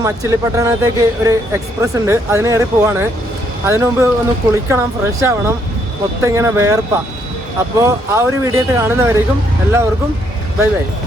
മച്ചിലിപ്പട്ടണത്തേക്ക് ഒരു എക്സ്പ്രസ് ഉണ്ട്, അതിന് കയറി പോവാണ്. അതിനു മുമ്പ് ഒന്ന് കുളിക്കണം, ഫ്രഷ് ആവണം. മൊത്തം ഇങ്ങനെ വേർപ്പാ. അപ്പോൾ ആ ഒരു വീഡിയോ കാണുന്നവരേക്കും എല്ലാവർക്കും ബൈ ബൈ.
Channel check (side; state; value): both; normal; correlation 0.71